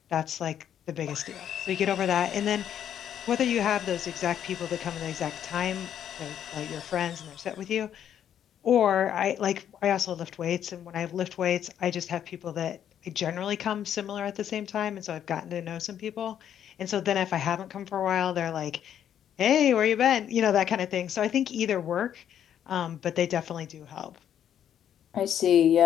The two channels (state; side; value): quieter; right; 9.7 dB